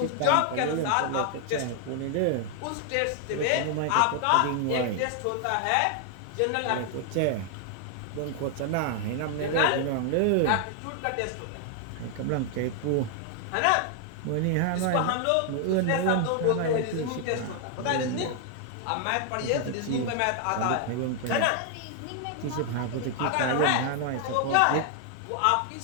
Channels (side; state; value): both; different; correlation 0.00